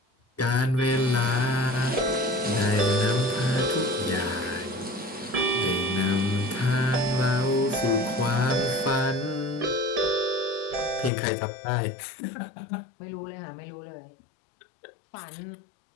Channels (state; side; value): drops out; right; at 11.1 s